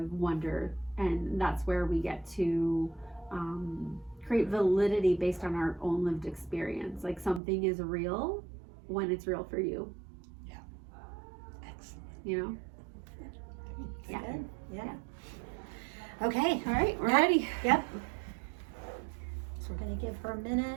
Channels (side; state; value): left; drops out; at 7.4 s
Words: wonder. And that's where we get to create validity based on our own lived experience. Like something is real when it's real for you. Yeah. Excellent. You know? Yeah. Good. Yeah. Yeah. Okay. All right, we're ready. Yep. So we're going to give her a